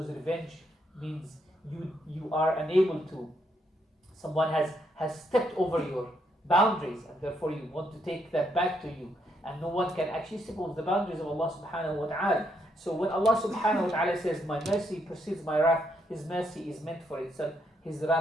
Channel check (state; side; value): normal; both; correlation 0.76